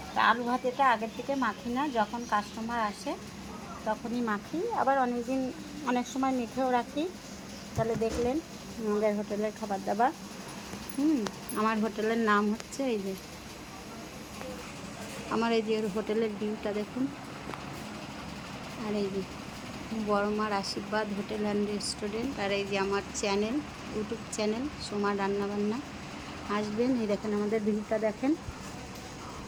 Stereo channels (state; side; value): identical; both; correlation 1.00